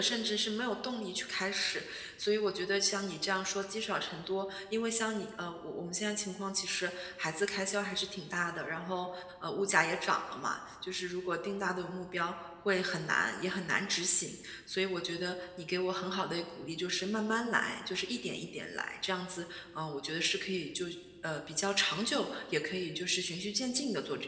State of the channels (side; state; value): both; identical; correlation 1.00